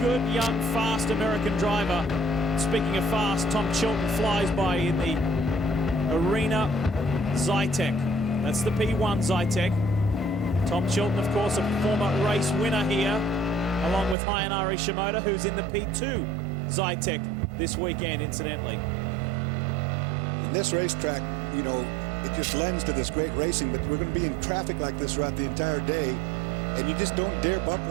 good, young, fast American driver. Speaking of fast, Tom Chilton flies by in the Arena Zytek. That's the P1 Zytek. Tom Chilton, of course, a former race winner here, along with Hayanari Shimoda, who's in the P2 Zytek this weekend, incidentally. This racetrack, you know, it just lends to this great racing, but we're going to be in traffic like this throughout the entire day, and you just don't dare bump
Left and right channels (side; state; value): left; drops out; at 14.2 s